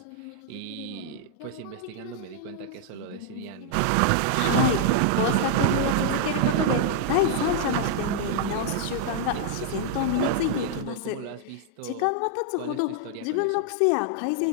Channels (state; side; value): different; both; correlation -0.01